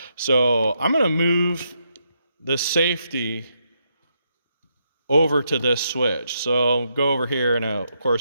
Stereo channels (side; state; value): both; inverted; correlation -0.79